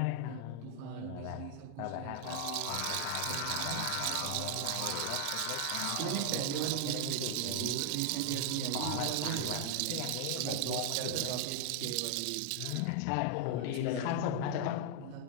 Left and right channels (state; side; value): different; both; correlation 0.00